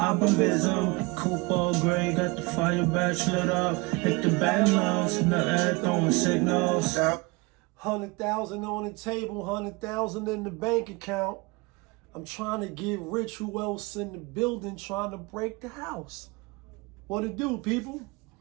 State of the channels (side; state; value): left; quieter; 25.5 dB